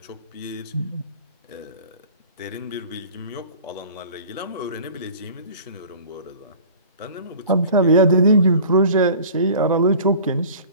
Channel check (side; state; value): both; inverted; correlation -0.43